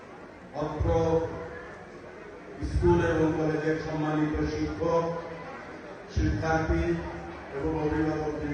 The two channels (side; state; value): both; identical; correlation 1.00